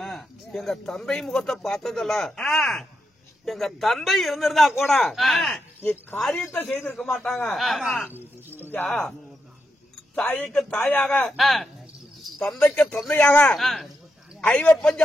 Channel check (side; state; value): both; normal; correlation 0.84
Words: எங்க தந்தை முகத்தை பார்த்ததில்ல. எங்க தந்தை இருந்திருந்தா கூட இக்காரியத்தை செய்திருக்க மாட்டாங்க. தாய்க்கு தாயாக தந்தைக்கு தந்தையாக ஐவப்பஞ்ச